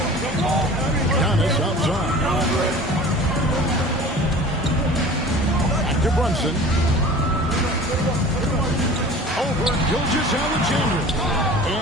Giannis outside. Back to Brunson. Over Gilgeous-Alexander.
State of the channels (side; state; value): both; normal; correlation 0.41